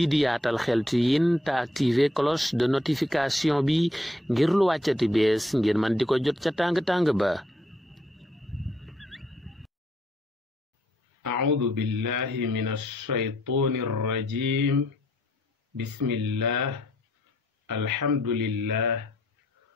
di Yaatal Xeltu Yin te activer cloche de notification bi ngir lu wàccati bees ngir man di ko jot ca tàng-tàng ba. أعوذ بالله من الشيطان الرجيم بسم الله الحمد لله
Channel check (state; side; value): normal; both; correlation 0.70